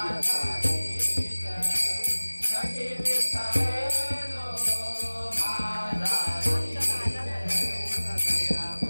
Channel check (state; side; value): inverted; both; correlation -1.00